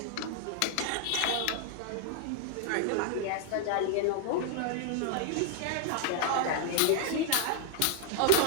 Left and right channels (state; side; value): different; both; correlation 0.00